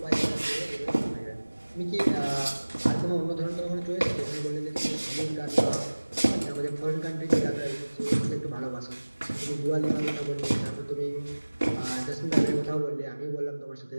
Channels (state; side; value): inverted; both; correlation -1.00